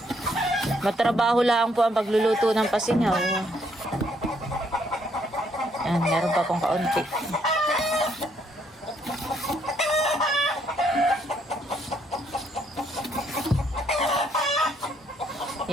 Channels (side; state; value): both; normal; correlation 0.71